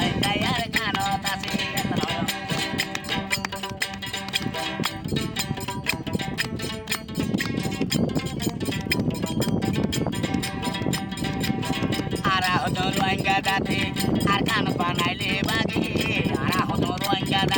arkano tasi. Hodon Rohingya dati arkan panaile bagi ara hodon Rohingya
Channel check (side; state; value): both; identical; correlation 1.00